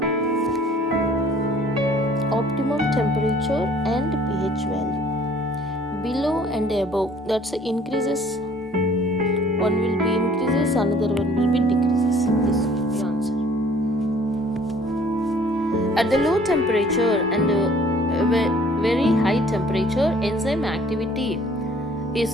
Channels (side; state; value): both; normal; correlation 0.55